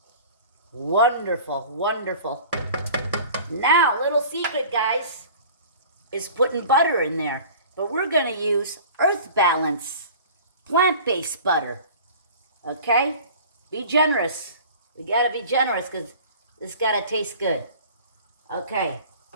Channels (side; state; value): both; inverted; correlation -0.43